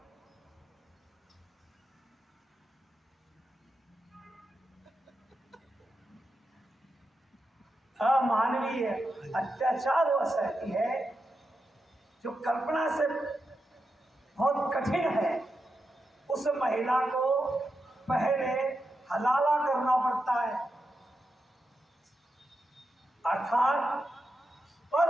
अमानवीय अत्याचार वह सहती है जो कल्पना से बहुत कठिन है। उस महिला को पहले हलाला करना पड़ता है, अर्थात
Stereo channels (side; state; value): both; normal; correlation 0.87